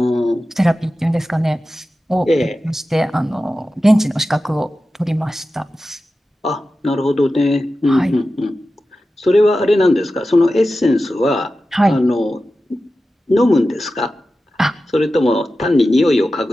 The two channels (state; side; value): normal; both; correlation 0.93